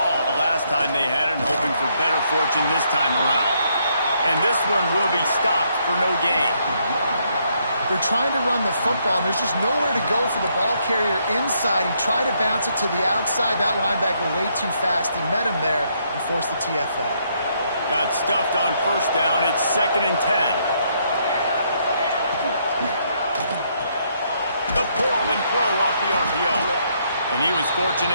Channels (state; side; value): inverted; both; correlation -0.73